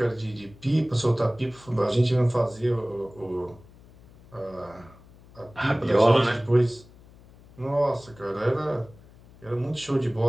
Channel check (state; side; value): noise; left; hum, 24 dB below the sound